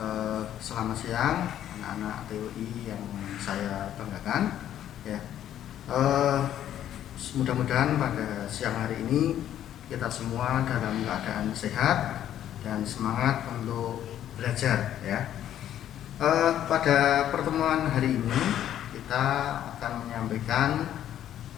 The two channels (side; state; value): right; quieter; 11.2 dB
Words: selamat siang anak-anak TUI yang saya banggakan. Ya, mudah-mudahan pada siang hari ini kita semua dalam keadaan sehat dan semangat untuk belajar. Ya, pada pertemuan hari ini kita akan menyampaikan